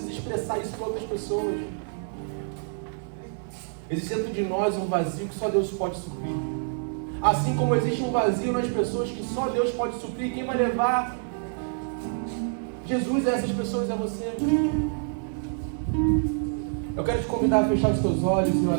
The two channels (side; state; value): left; silent; 60 dB below the other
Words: expressar isso para outras pessoas. Existe dentro de nós um vazio que só Deus pode suprir. Assim como existe um vazio nas pessoas que só Deus pode suprir, quem vai levar Jesus a essas pessoas é você. Eu quero te convidar a fechar os teus olhos e